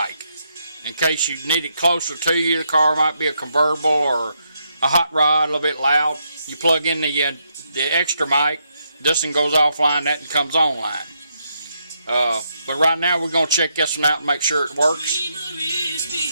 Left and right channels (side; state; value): both; inverted; correlation -0.79